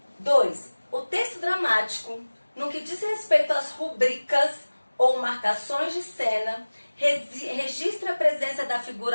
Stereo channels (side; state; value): both; inverted; correlation -1.00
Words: 2. O texto dramático, no que diz respeito às rubricas ou marcações de cena, registra a presença da